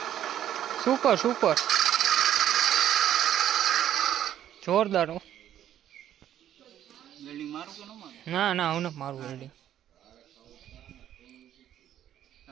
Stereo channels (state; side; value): quieter; left; 11.1 dB